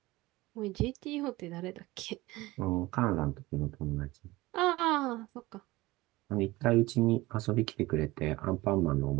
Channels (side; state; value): left; quieter; 19.9 dB